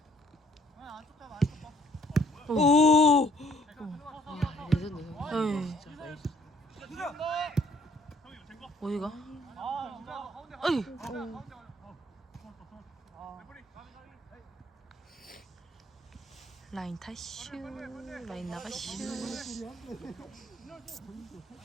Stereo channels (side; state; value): both; normal; correlation 0.62